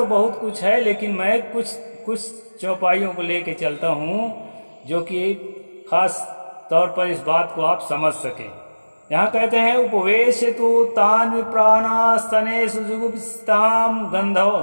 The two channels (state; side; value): inverted; both; correlation -1.00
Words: बहुत कुछ है, लेकिन मैं कुछ चौपाइयों को लेके चलता हूँ जो कि खास तौर पर इस बात को आप समझ सकें। यहाँ कहते हैं उपवेश तु तान विप्राणास्तने सुजुगुप्ताम